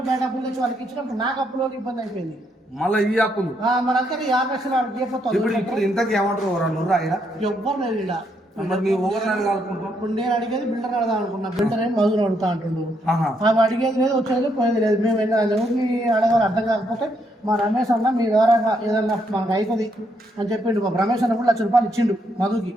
బయట అప్పులు తెచ్చి వాళ్ళకి ఇచ్చినప్పుడు నాకు అప్పులో ఇబ్బంది అయిపోయింది. మళ్ళీ ఈ అప్పులు మరి అంతా 50 లక్షలు వాళ్ళకి ఇప్పుడు ఇంతకు ఏమంటారు? 2 ఆయన ఎవ్వరు లేదు ఇలా. మరి మీ ఊరిని అడగాలనుకుంటాం. ఇప్పుడు నేను అడిగేది బిల్డర్ అడగా అనుకున్నా. బిల్డర్ ఏం మధురు అడుగుతా అంటుండు. ఆమె అడిగేది లేదు, వచ్చేది పోయేది లేదు. మేము ఎవరిని అడగాలి అర్థం కాకపోతే మా రమేష్ అన్న మీ ద్వారా ఏదన్నా మనకు అయిపోయింది అని చెప్పిండు. మా రమేష్ అన్న కూడా 1 లక్ష రూపాయలు ఇచ్చిండు మధుకి.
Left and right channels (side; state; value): both; normal; correlation 0.75